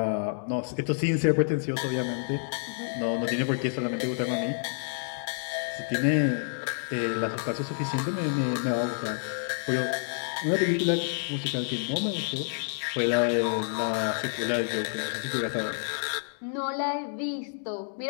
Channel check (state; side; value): silent; right; digital silence